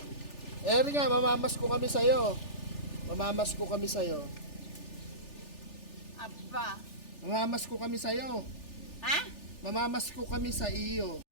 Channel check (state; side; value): late; right; 3.4 ms